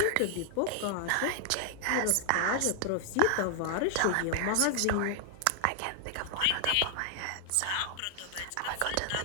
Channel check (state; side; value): different; both; correlation 0.00